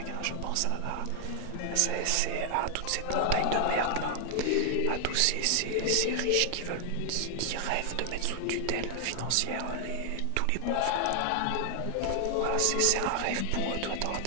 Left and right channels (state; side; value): different; both; correlation 0.00